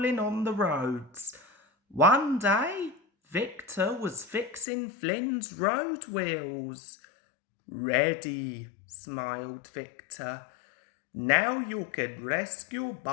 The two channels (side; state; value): right; drops out; at 4.7 s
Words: on the roads. One day, Victor was fixing Flynn's road wheels. "Ready," smiled Victor. "Now you can rescue